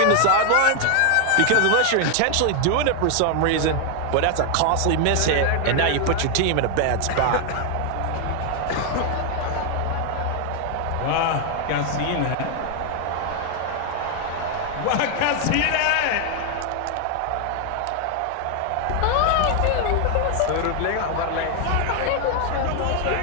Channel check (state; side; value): different; both; correlation 0.00